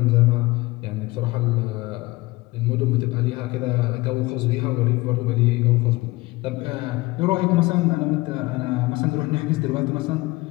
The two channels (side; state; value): right; quieter; 21.2 dB